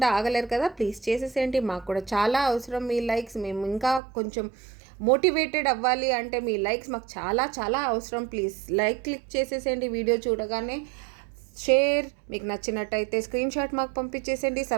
ఆగలేరు కదా, ప్లీజ్ చేసేసేయండి. మాకు కూడా చాలా అవసరం మీ లైక్స్. మేము ఇంకా కొంచెం మోటివేటెడ్ అవ్వాలి అంటే మీ లైక్స్ మాకు చాలా చాలా అవసరం. ప్లీజ్ లైక్ క్లిక్ చేసేసేయండి వీడియో చూడగానే. షేర్, మీకు నచ్చినట్టయితే స్క్రీన్ షాట్ మాకు పంపించేసేయండి.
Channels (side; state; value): left; drops out; at 4.0 s